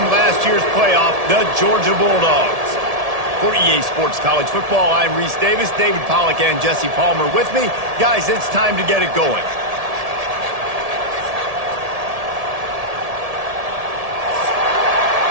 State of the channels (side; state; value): left; late; 1.7 ms